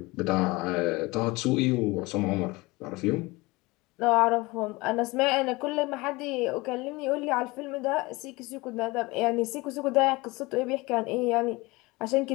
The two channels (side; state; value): right; quieter; 22.9 dB